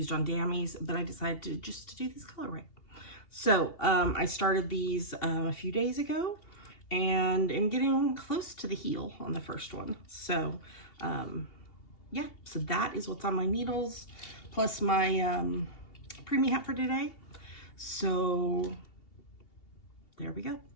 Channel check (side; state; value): right; late; 2.8 ms